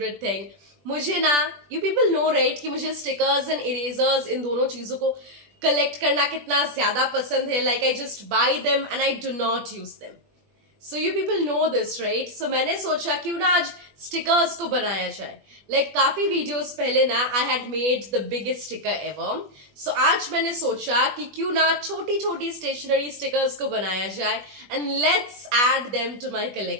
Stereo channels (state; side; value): late; left; 20 ms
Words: thing. मुझे ना, you people know right कि मुझे stickers and erasers इन दोनों चीजों को collect करना कितना ज्यादा पसंद है. Like I just buy them and I do not use them. So you people know this, right? So मैंने सोचा क्यों ना आज स्टिकर्स को बनाया जाए. Like काफी वीडियोस पहले ना I had made the biggest sticker ever. So आज मैंने सोचा कि क्यों ना छोटी छोटी स्टेशनरी स्टिकर्स को बनाया जाए and let's add them to my